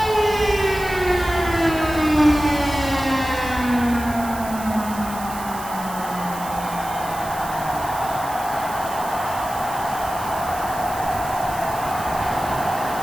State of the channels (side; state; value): right; noise; hiss, 14 dB below the sound